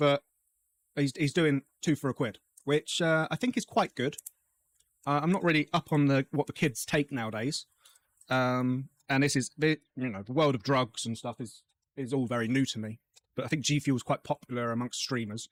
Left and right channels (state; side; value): identical; both; correlation 1.00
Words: he's doing 2 for £1, which I think is quite good. I'm not really up on what the kids take nowadays. And this is, the world of drugs and stuff is all very new to me. But I think G Fuel is quite popular amongst streamers.